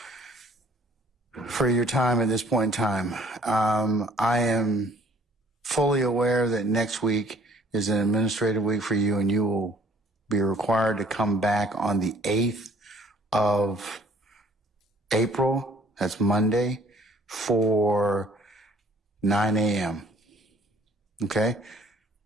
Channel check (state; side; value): normal; both; correlation 0.58